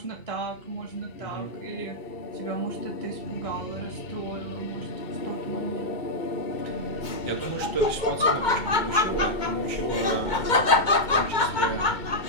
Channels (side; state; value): right; late; 2.2 ms